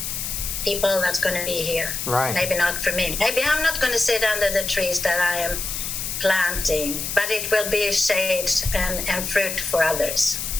people that's going to be here. Right. Maybe not for me. Maybe I'm not going to sit under the trees that I am planting, but it will be shade and fruit for others.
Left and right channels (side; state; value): left; noise; hiss, 4 dB below the sound